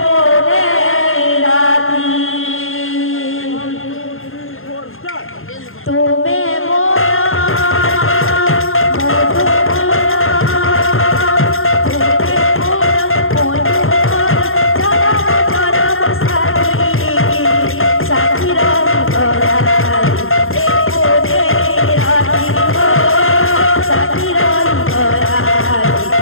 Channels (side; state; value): right; late; 0.60 ms